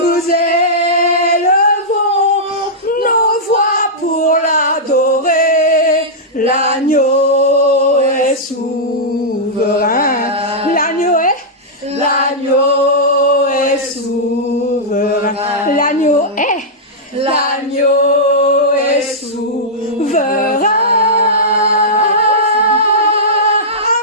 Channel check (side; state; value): both; normal; correlation -0.11